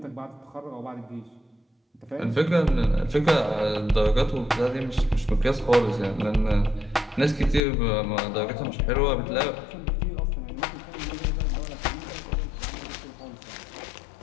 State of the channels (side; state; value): right; drops out; at 7.6 s